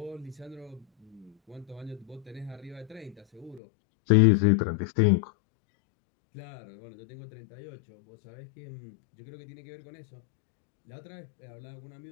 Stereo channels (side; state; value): right; drops out; at 3.6 s